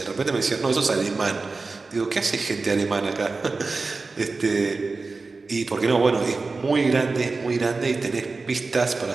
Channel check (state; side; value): quieter; left; 3.9 dB